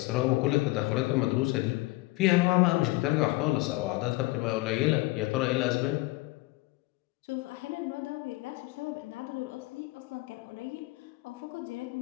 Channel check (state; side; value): quieter; right; 20.9 dB